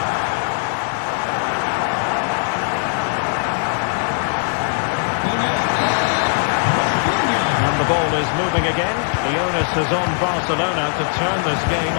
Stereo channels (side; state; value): right; silent; digital silence